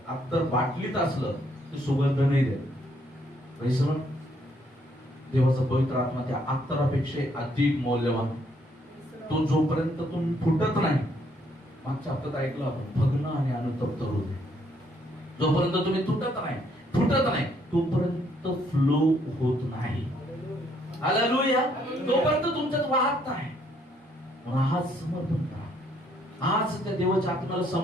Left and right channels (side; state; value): both; normal; correlation 0.69